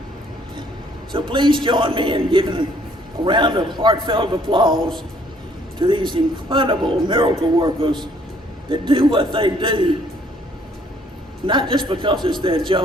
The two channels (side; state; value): both; normal; correlation 0.63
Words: So please join me in giving a round of heartfelt applause to these incredible miracle workers that do what they do, not just because it's their